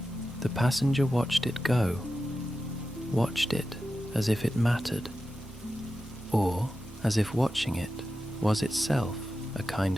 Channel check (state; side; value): normal; both; correlation 0.92